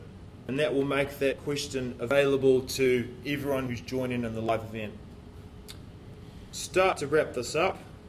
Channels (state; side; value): identical; both; correlation 1.00